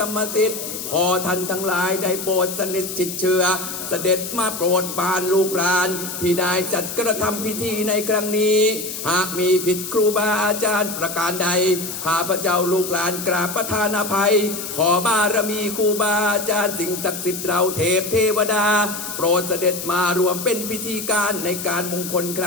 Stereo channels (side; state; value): left; noise; hiss, 7 dB below the sound